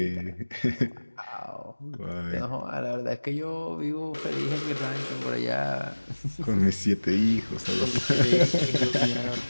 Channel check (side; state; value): both; inverted; correlation -1.00